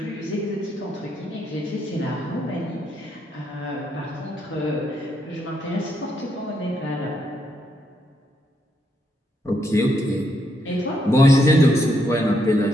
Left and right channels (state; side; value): normal; both; correlation 0.77